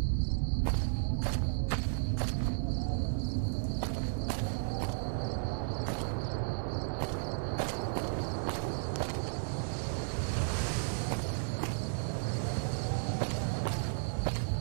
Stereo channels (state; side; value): silent; left; digital silence